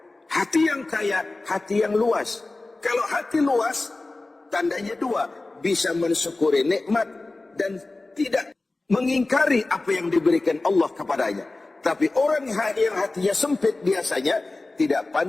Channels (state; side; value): quieter; right; 3.2 dB